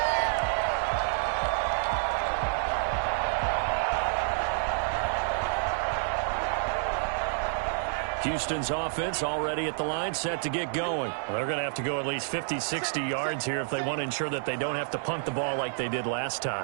Houston's offense already at the line, set to get going. Well, they're going to have to go at least 50, 60 yards here if they want to ensure that they don't have to punt the ball like they did last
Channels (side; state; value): left; silent; 59 dB below the other